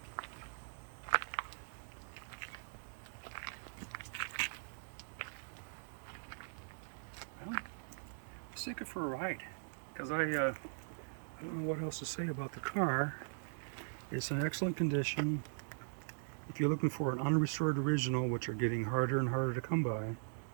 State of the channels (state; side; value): silent; left; digital silence